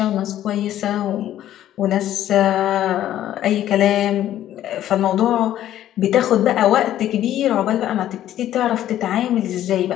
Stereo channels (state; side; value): quieter; right; 12.3 dB